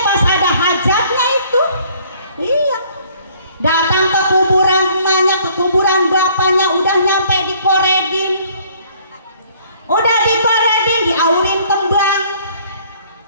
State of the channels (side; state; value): both; inverted; correlation -0.59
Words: pas ada hajatnya itu. Iya. Datang ke kuburan emaknya, ke kuburan bapaknya, udah nyampe dikoredin. Udah dikoredin, diaurin kembang.